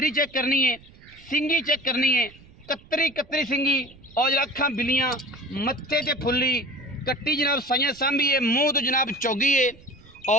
चेक करनी है, सिंगी चेक करनी है, कतरी कतरी सिंगी और जरा अखां बिलियां मत्थे ते फुल्ली कट्टी जनाब साइयां सांभी है, मूँह तो जनाब चौगी है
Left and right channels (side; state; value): right; noise; rumble, 24 dB below the sound